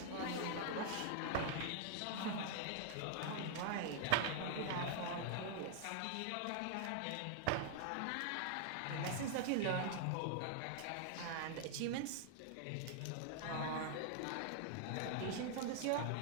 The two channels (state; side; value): different; both; correlation -0.01